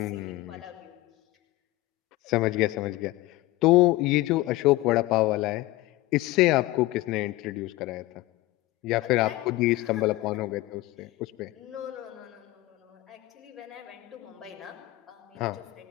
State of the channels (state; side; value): quieter; right; 18.2 dB